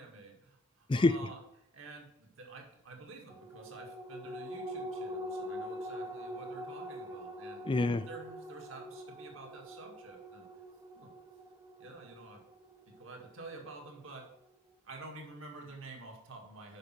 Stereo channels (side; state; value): both; normal; correlation 0.68